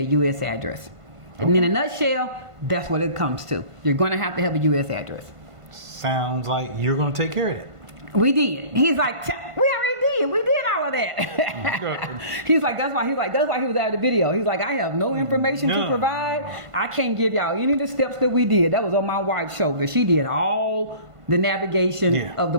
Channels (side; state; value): left; late; 1.5 ms